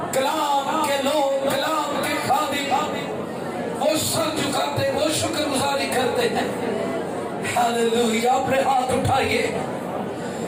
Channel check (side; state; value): both; identical; correlation 1.00